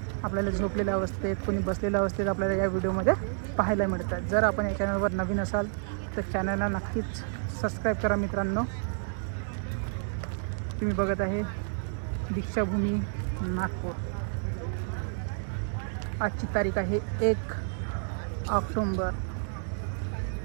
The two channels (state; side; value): silent; left; digital silence